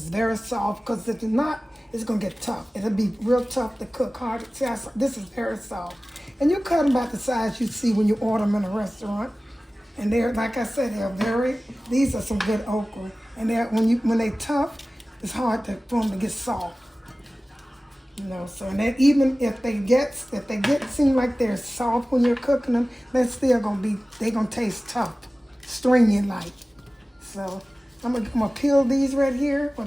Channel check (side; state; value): both; normal; correlation 0.97